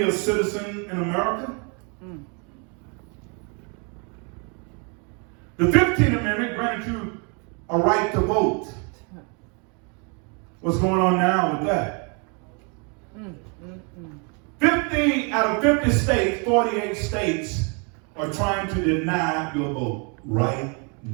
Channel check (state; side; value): quieter; left; 35.3 dB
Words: a citizen in America? The 15th Amendment granted you a right to vote. What's going on now with that? 50 out of 50 states, 48 states are trying to deny your vote right